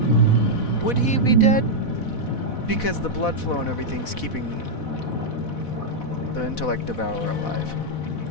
would he be dead? Because the blood flow and everything's keeping the intellect devourer alive.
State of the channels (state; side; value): late; right; 4.1 ms